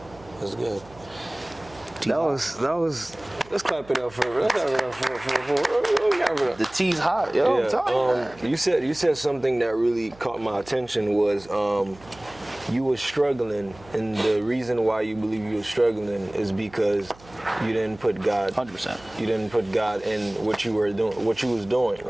That's good. That was. Let's clap it up for. Let's clap it up for. The tea's hot, yo. Yeah. I'm telling you. You said something that really caught my attention was you were struggling, and the reason why you believe you were struggling is because you didn't put God. 100%. You didn't put God in what you were doing, what you was doing,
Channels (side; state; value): right; noise; hum, 23 dB below the sound